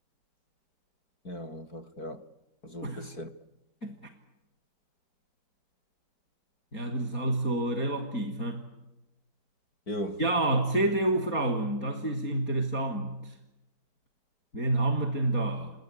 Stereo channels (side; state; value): right; late; 4.3 ms